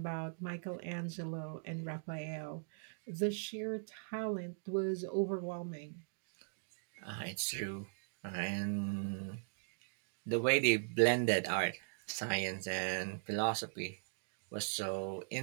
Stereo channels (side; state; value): left; silent; digital silence